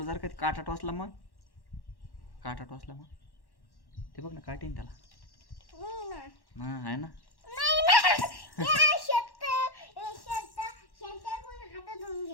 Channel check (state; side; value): late; right; 1.1 ms